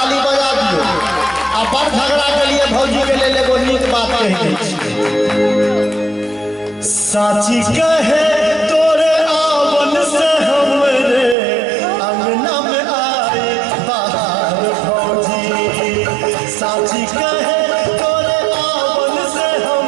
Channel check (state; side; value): drops out; left; at 11.4 s